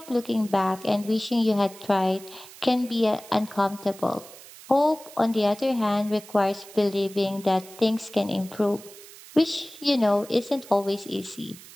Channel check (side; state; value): right; noise; hiss, 19 dB below the sound